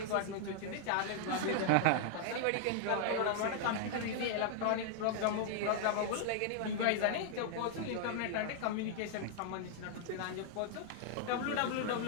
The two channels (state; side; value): different; both; correlation 0.00